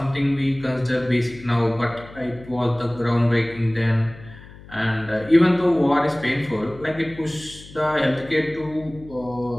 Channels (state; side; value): noise; left; hum, 19 dB below the sound